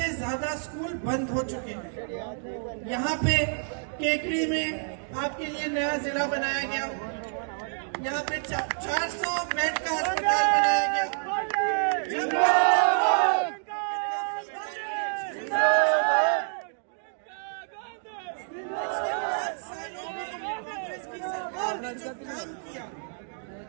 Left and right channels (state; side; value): silent; left; digital silence